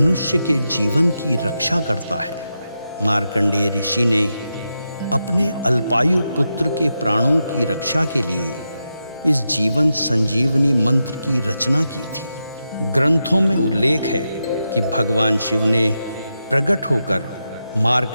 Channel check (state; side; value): inverted; both; correlation -0.87